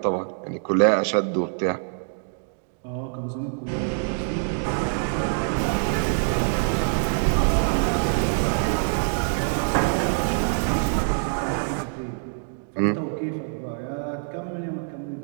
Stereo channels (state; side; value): silent; left; digital silence